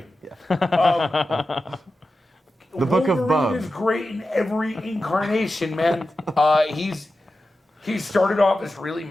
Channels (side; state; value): both; normal; correlation 0.92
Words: The Book of Wolverine Bub. is great in every incarnation, man. He started off as really